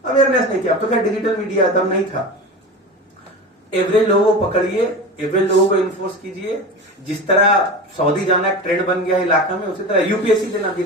अवेयरनेस नहीं किया, अब तो क्या डिजिटल मीडिया तब नहीं था। एवरेज लोगों को पकड़िए, एवरेज लोगों को इन्फोर्स कीजिए। जिस तरह सऊदी जाना एक ट्रेंड बन गया इलाका में, उसी तरह यूपीएससी देना भी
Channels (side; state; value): both; normal; correlation 0.28